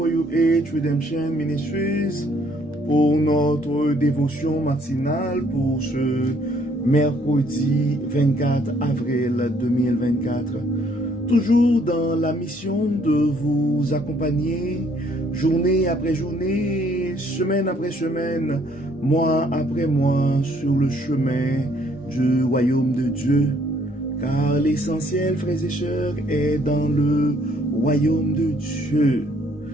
Redemption Ministries pour notre dévotion matinale pour ce mercredi 24 avril 2024. Toujours dans la mission de vous accompagner journée après journée, semaine après semaine, mois après mois sur le chemin du royaume de Dieu. Car l'essentiel, frères et sœurs, est dans le royaume de Dieu.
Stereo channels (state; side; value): noise; left; rumble, 28 dB below the sound